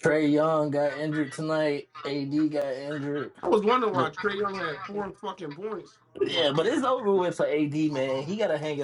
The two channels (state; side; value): identical; both; correlation 1.00